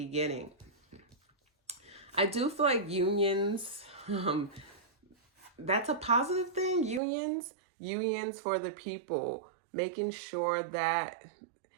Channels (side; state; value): left; drops out; at 7.0 s